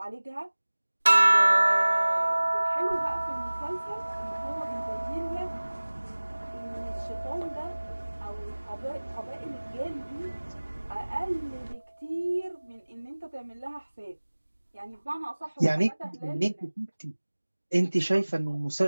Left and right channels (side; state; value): both; inverted; correlation -1.00